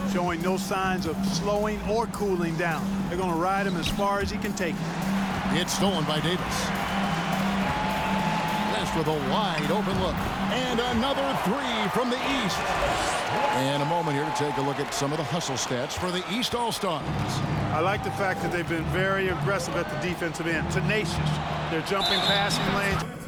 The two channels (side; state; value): both; identical; correlation 1.00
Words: Showing no signs of slowing or cooling down. They're going to ride him as far as he can take it. It's stolen by Davis. West with a wide open look. And another three from the East. And a moment here to take a look at some of the hustle stats for the East All-Stars. I like the fact that they've been very aggressive at the defensive end. Tenacious. They're jumping passing lanes.